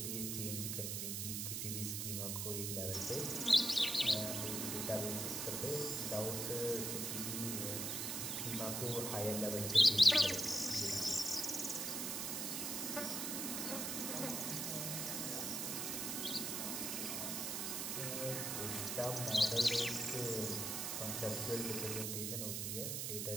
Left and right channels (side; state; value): right; noise; hiss, 1 dB below the sound